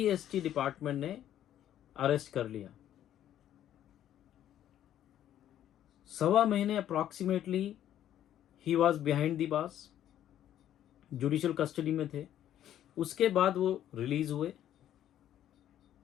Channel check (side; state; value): right; quieter; 11.4 dB